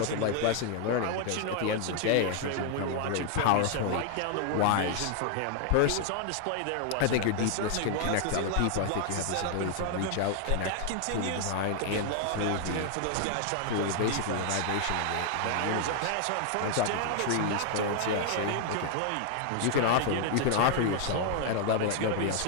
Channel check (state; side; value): different; both; correlation 0.00